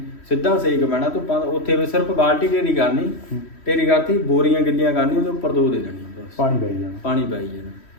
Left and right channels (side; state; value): right; late; 3.1 ms